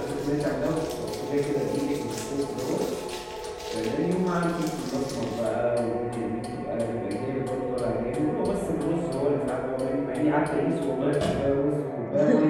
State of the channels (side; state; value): both; identical; correlation 1.00